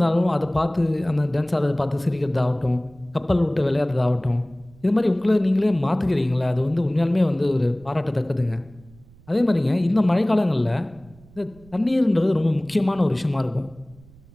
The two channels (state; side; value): noise; right; rumble, 26 dB below the sound